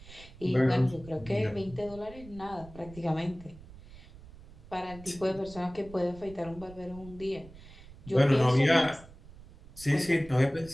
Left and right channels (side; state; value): right; noise; rumble, 19 dB below the sound